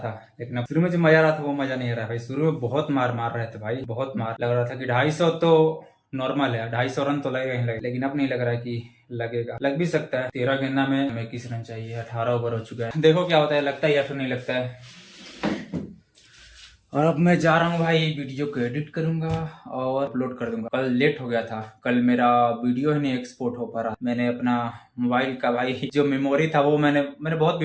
लेकिन अब शुरू में जो मजा आ रहा था वो मजा नहीं आ रहा है भाई। शुरू में बहुत मार रहे थे भाई, बहुत मार। लग रहा था कि 250 तो नॉर्मल है, 250 रन तो लगेगा ही लगेगा, लेकिन अब नहीं लग रहा है कि लगेगा। लग भी सकता है। 13 गेंदा में हमें 21 रन चाहिए, 18 ओवर हो चुका है। देखो क्या होता है, लगता है या फिर नहीं लगता है। और अब मैं जा रहा हूँ भाई, वीडियो को एडिट करूंगा और अपलोड कर दूंगा। कल लेट हो गया था, कल मेरा वीडियो ही नहीं एक्सपोर्ट हो पा रहा। मैंने अपना मोबाइल का भाई जो मेमोरी था वो मैंने बहुत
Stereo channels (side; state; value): both; identical; correlation 1.00